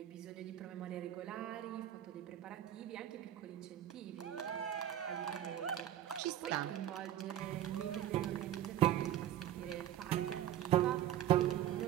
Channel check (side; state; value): left; quieter; 11.8 dB